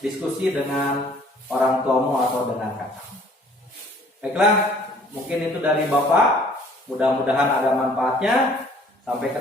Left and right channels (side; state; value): both; normal; correlation 0.56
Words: dengan orang tuamu atau dengan kakak. Baiklah, mungkin itu dari Bapak. Mudah-mudahan ada manfaatnya. Sampai